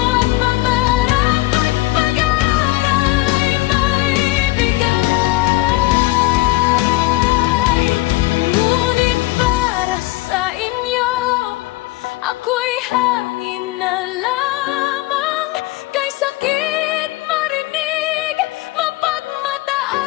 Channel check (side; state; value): right; quieter; 19.7 dB